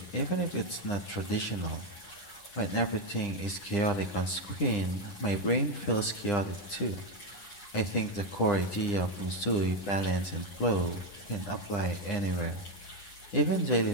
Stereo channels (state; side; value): late; right; 9.9 ms